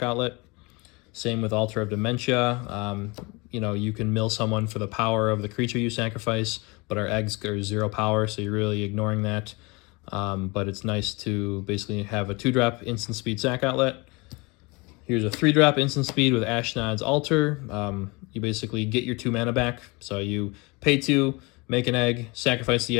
outlet. Same with Altar of Dementia. You can mill someone for the power of the creature you sacrifice, but our eggs are 0 power, so you're really ignoring that. but it's nice to basically have a 2-drop instant speed sack outlet. Here's a 3-drop instant speed with Ashnod's Altar. You basically get your 2 mana back. So you pay 2, make an egg, sacrifice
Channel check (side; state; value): right; quieter; 26.8 dB